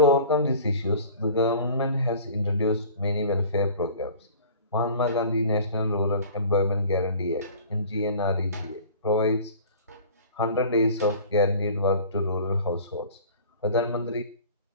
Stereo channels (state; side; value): inverted; both; correlation -0.44